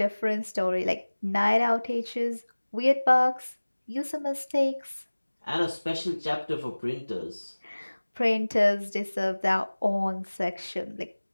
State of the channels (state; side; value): inverted; both; correlation -1.00